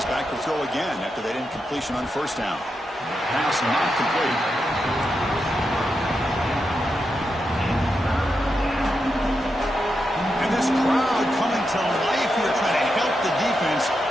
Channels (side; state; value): both; normal; correlation 0.86